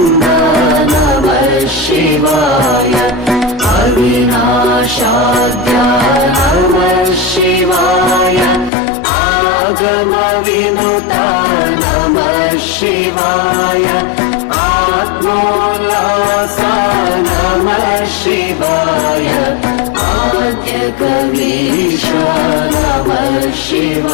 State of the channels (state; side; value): drops out; right; at 8.7 s